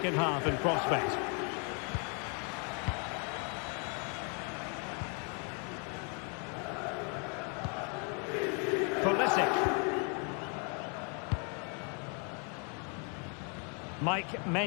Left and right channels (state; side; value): quieter; right; 37.6 dB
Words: half in prospect. Pulisic. Mike